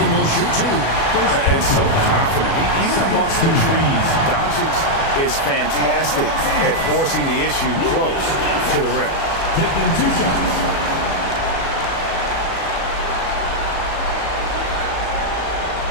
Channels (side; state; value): right; late; 36 ms